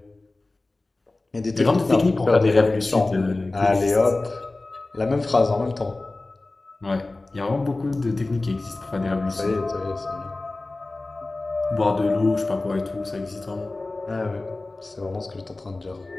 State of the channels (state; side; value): quieter; right; 3.1 dB